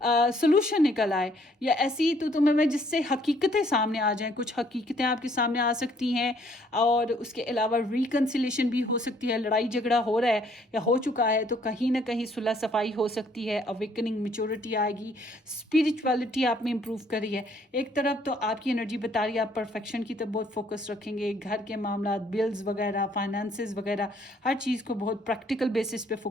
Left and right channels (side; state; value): both; normal; correlation 0.64